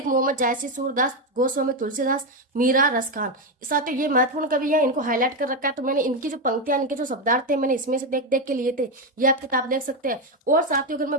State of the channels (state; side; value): normal; both; correlation 0.09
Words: मोहम्मद, जायसी, सूरदास, गोस्वामी तुलसीदास, मीरा, रसखान। साथियों ये महत्वपूर्ण कवि है, इनको हाईलाइट कर रखा है। तो मैंने इनकी जो पंक्तियां, इनके जो शब्दार्थ थे, मैंने इसमें से देख देख के लिए थे। ये आप किताब देख सकते हैं। और साथियों अगर